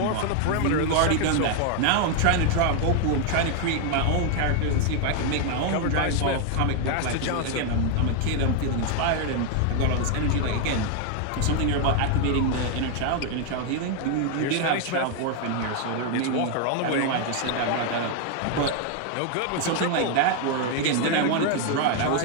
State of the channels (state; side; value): different; both; correlation 0.00